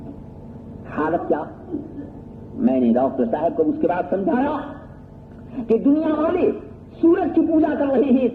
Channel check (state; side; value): identical; both; correlation 1.00